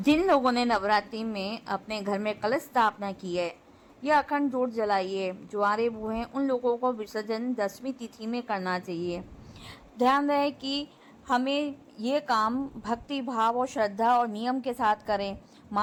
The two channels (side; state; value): both; identical; correlation 1.00